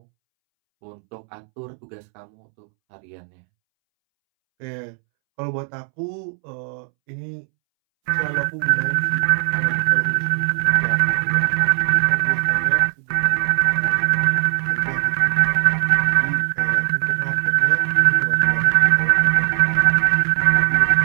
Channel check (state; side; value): silent; left; 66 dB below the other